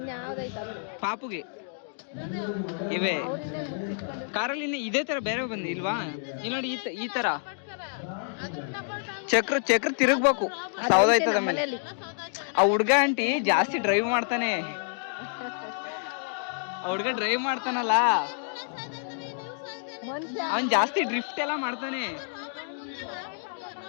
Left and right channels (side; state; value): right; silent; digital silence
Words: ಪಾಪುಗೆ ಇವೆ ಕಾರಲ್ಲಿ ಇದೇ ತರ ಬೇರೆ ಬಂದು ಇಲ್ವಾ? ಇಲ್ಲಿ ನೋಡಿ ಈ ತರ ಚಕ್ರ ತಿರುಗ್ಬೇಕು, ಸೌದಾಯ್ತದ ಮೇಲೆ. ಆ ಹುಡ್ಗ ಆಂಟಿ ಜಾಸ್ತಿ ಡ್ರೈವ್ ಮಾಡ್ತಾನೆ. ಆ ಹುಡ್ಗ ಡ್ರೈವ್ ಮಾಡ್ತಾನಲ್ಲ, ಅವನ್ ಜಾಸ್ತಿ ಡ್ರಿಫ್ಟ್ ಎಲ್ಲ ಮಾಡ್ತಾನೆ.